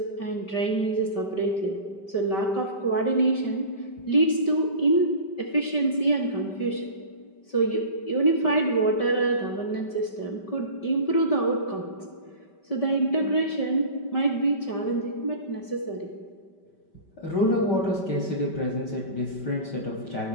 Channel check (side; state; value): right; late; 5.2 ms